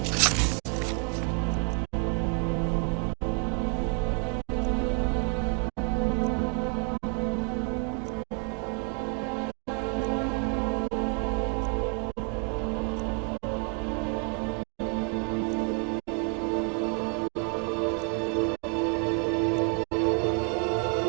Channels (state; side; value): quieter; left; 39.7 dB